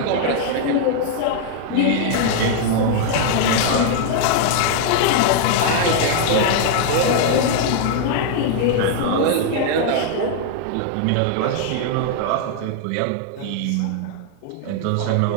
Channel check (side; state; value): both; different; correlation 0.00